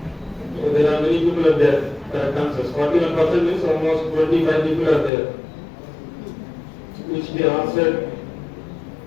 so there are many people are there. Correct answers. 41% means almost 25 people are there, which they answered.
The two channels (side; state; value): right; drops out; at 5.1 s